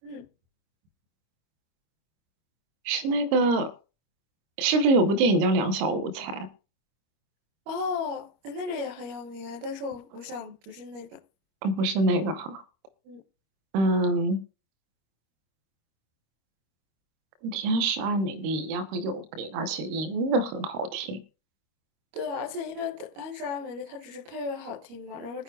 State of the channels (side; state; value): left; late; 25 ms